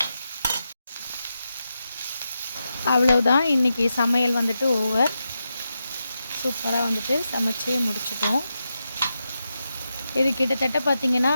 அவ்வளவுதான், இன்றைக்கி சமையல் ஓவர். சூப்பராக சமைச்சு முடிச்சிட்டோம். இது கிட்டத்தட்ட பார்த்திங்கன்னா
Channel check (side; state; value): both; inverted; correlation -0.88